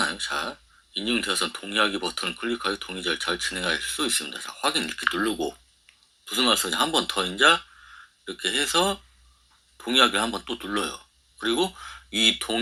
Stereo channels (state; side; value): identical; both; correlation 1.00